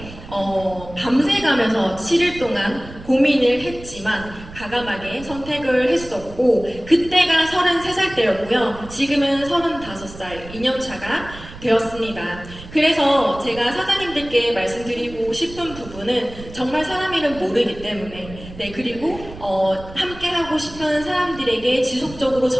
밤새 가면서 7일 동안 고민을 했지만 과감하게 선택을 했었고 그때가 33살 때였고요. 지금은 35살 2년차가 되었습니다. 그래서 제가 사장님들께 말씀드리고 싶은 부분은 정말 사람 이름 모르기 때문에 그리고 함께 하고 싶은 사람들에게 지속적으로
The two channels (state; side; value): noise; right; rumble, 16 dB below the sound